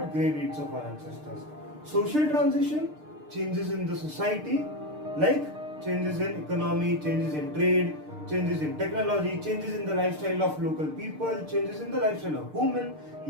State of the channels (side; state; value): left; late; 6.6 ms